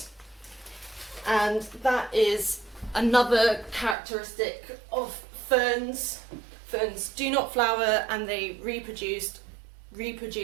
and that is another characteristic of ferns. Ferns do not flower and they reproduce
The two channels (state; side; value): drops out; left; at 4.0 s